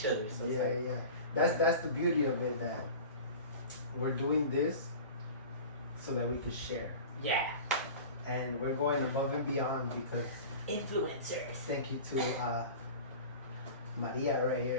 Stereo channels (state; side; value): inverted; both; correlation -0.36